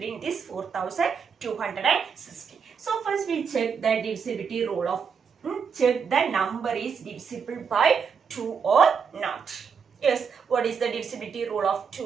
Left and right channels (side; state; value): left; quieter; 6.3 dB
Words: in this 4260? So first we check the divisibility rule of check the number is divisible by 2 or not. Yes, what is the divisibility rule of